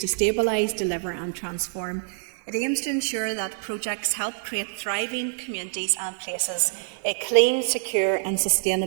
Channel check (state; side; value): silent; left; digital silence